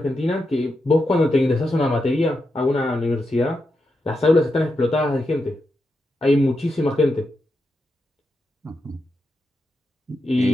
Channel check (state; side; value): normal; both; correlation 0.86